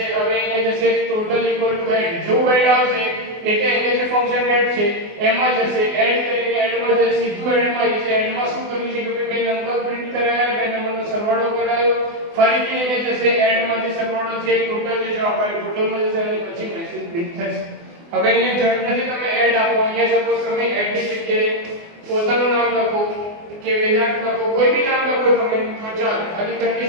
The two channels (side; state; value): left; late; 24 ms